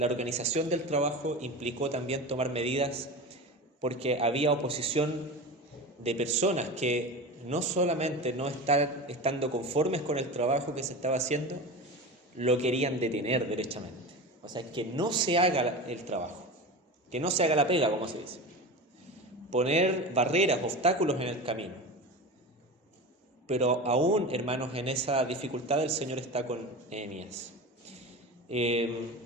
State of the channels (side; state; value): both; normal; correlation 0.28